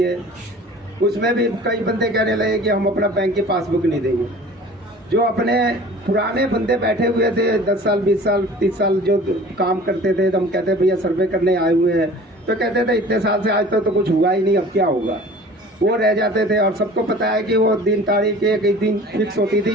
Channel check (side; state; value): both; normal; correlation 0.44